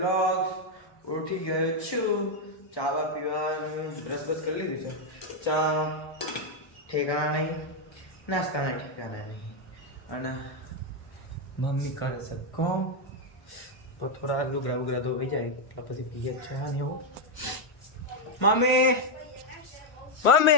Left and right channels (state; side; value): late; right; 1.3 ms